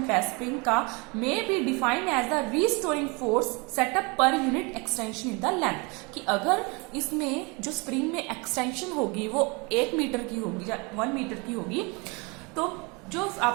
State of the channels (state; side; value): quieter; left; 29.1 dB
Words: है स्प्रिंग का, may be defined as the restoring force setup per unit extension in the length. कि अगर इसमें जो स्प्रिंग में एक्सटेंशन होगी वो 1 मीटर की होगी या 1 मीटर की होगी, तो जो